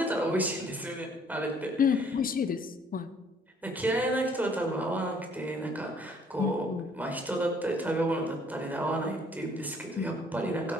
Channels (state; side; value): normal; both; correlation 0.60